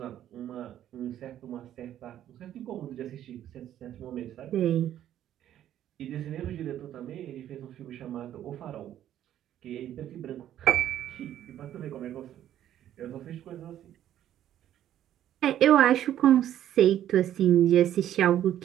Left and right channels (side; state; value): left; quieter; 11.5 dB